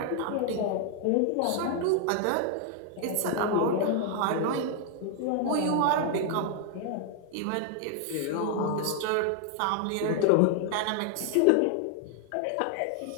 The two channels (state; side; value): different; both; correlation 0.00